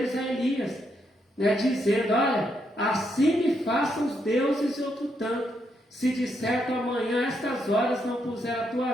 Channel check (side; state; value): both; normal; correlation 0.78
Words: a Elias, né, dizendo, olha, assim me façam os deuses e outro tanto, se de certo amanhã a estas horas não puser a tua